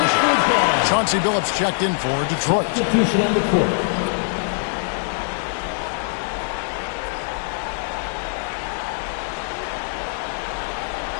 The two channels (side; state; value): right; silent; 58 dB below the other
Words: Chauncey Billups checked in for Detroit. Substitution on the court.